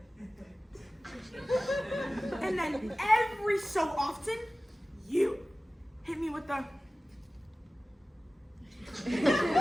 And then every so often, you hit me with the...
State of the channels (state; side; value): normal; both; correlation 0.97